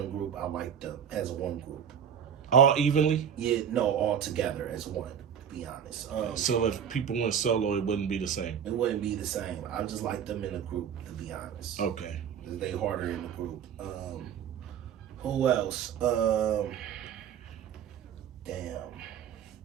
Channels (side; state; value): left; quieter; 8.2 dB